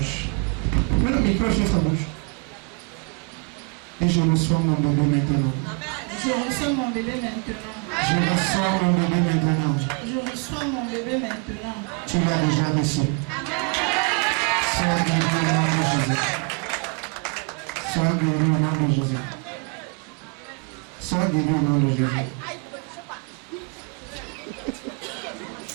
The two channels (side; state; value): left; quieter; 33.3 dB